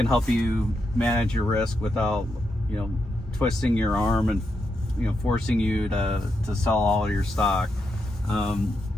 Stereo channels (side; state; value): both; normal; correlation 0.84